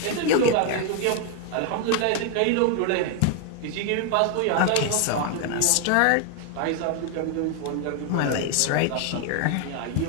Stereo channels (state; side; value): different; both; correlation 0.01